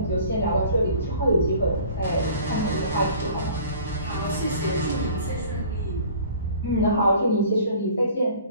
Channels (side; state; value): both; inverted; correlation -0.48